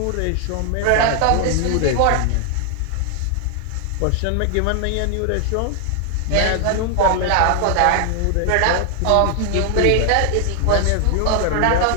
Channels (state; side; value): different; both; correlation 0.00